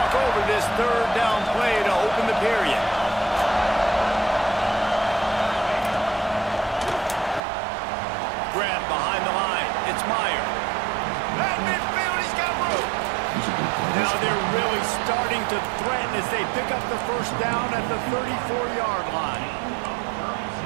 over this third down play to open the period. Grab behind the line. It's Meyer. At midfield, he's got room. Now they're really starting to threaten as they pick up the first down at the 34-yard line.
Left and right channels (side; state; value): left; drops out; at 7.4 s